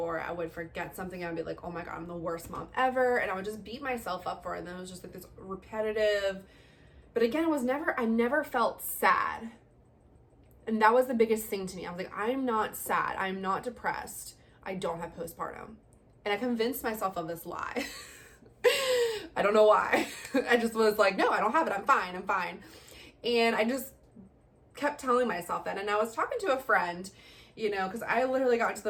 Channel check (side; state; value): both; identical; correlation 1.00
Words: I would forget something and I'd be oh my God, I'm the worst mom ever. And I would just beat myself up for it. And then it was just this repetitive, but again, I never felt sad. And that was the biggest thing to me. I was I'm not sad. I'm not depressed. I don't have postpartum. And I convinced myself of this lie. I don't know why. I just was no, I don't have it. I'm fine. And I just kept telling myself that. And I was talking to a friend, because I literally got to